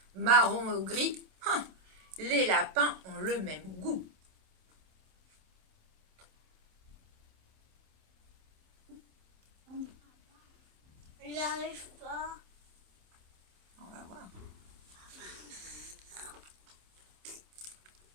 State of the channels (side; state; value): left; late; 27 ms